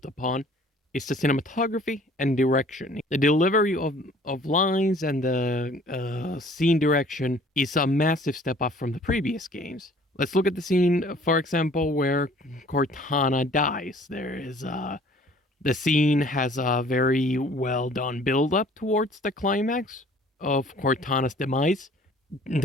upon is the cinematography and direction. The delivery of lines and the scene direction is a massive step up from the previous games. Let's look at the scene, for example, where Cortana dies. The scene has a very well done build up towards the climax of Cortana's demise.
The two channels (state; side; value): normal; both; correlation 0.53